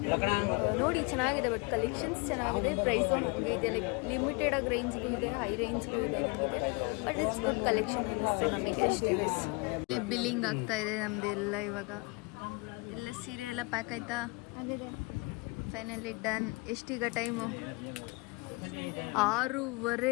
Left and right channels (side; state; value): right; quieter; 28.3 dB